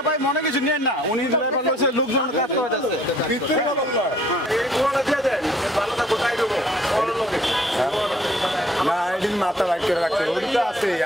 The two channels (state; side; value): normal; both; correlation 0.58